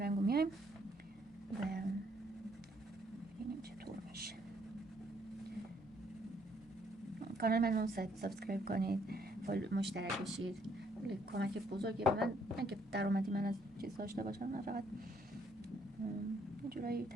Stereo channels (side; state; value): both; normal; correlation 0.69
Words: میایم و ببینیم چطور میشه. کانال منو سابسکرایب کنید، مشترک بشید. کمک بزرگی به من، نه که درآمدی من از چیز داشته باشم، نه فقط یه جورایی